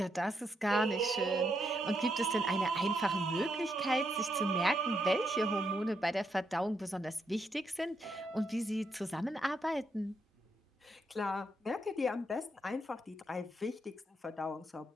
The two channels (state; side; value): normal; both; correlation 0.79